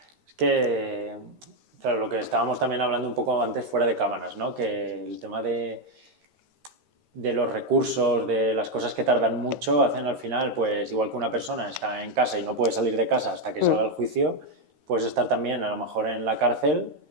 Es que, claro, lo que estábamos también hablando un poco antes fuera de cámaras, ¿no? Que el tema de los recursos, de las cosas que tardan mucho, hacen al final, pues igual que una persona está en casa y no puede salir de casa hasta que salga el juicio, puedes estar también a lo mejor en la cárcel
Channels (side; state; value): left; late; 13 ms